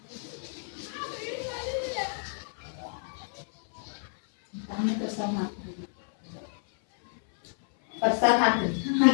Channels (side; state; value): right; silent; 58 dB below the other